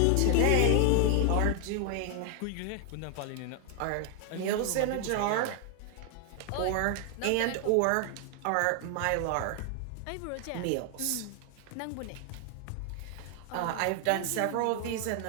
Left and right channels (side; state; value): both; different; correlation 0.00